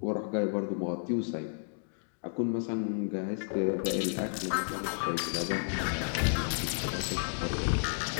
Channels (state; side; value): silent; right; digital silence